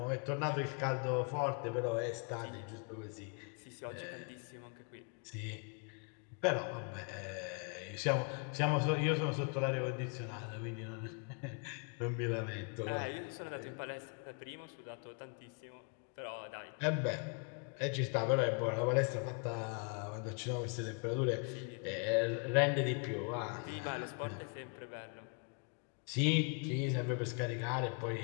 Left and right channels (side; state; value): right; quieter; 39.0 dB